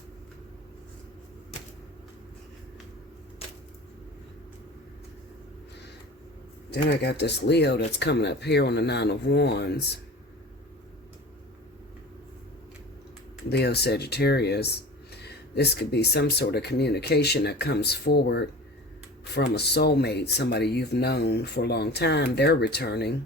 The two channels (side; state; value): both; normal; correlation 0.37